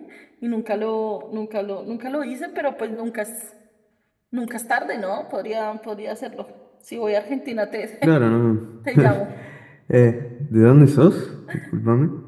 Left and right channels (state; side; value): identical; both; correlation 1.00